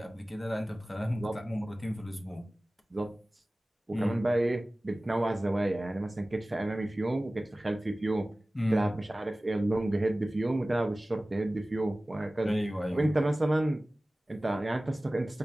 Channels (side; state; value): both; normal; correlation 0.97